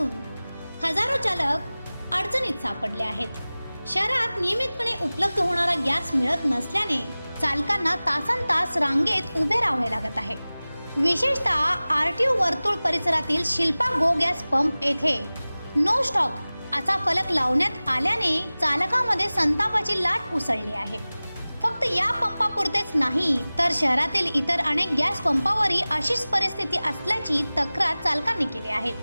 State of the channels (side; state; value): both; inverted; correlation -0.98